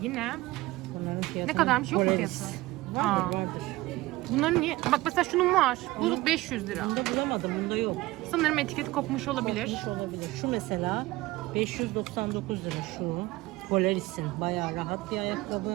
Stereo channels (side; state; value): left; quieter; 19.2 dB